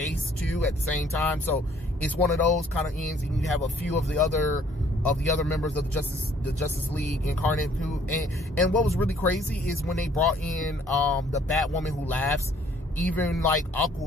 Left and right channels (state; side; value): normal; both; correlation 0.60